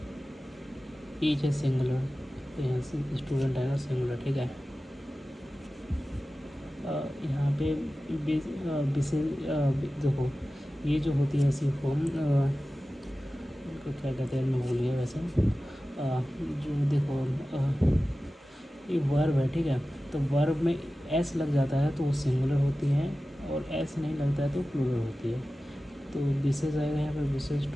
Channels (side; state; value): both; normal; correlation 0.95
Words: है सिंगुलर, तो यहाँ से स्टूडेंट आएगा सिंगुलर, ठीक है। यहाँ पे देखो ये जो होती है ऐसी फॉर्म, इनको क्या कहते हैं मैं भूल गया वैसे। जो देखो ये वर्ब है, ठीक है। तो वर्ब में एस लग जाता है तो वो सिंगुलर होती है, और एस नहीं लगता है तो प्लूरल होती है। तो विशेष आएगा यहाँ पर, विशेष